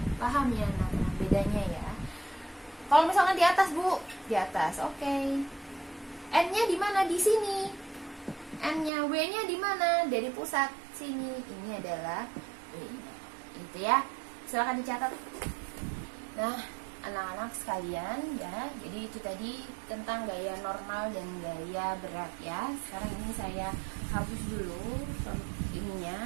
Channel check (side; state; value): left; drops out; at 8.9 s